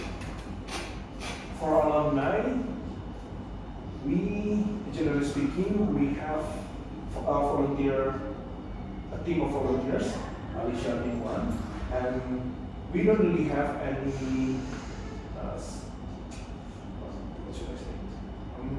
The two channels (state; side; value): identical; both; correlation 1.00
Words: For alumni, we, generally speaking, we have a team of volunteers, Alicia being one, and we don't really have any, what should I say,